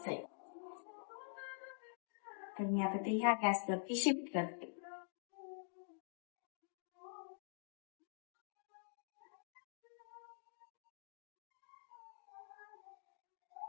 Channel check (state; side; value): silent; right; digital silence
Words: तर मी आता ते ह्या गॅसवरती शिफ्ट करते.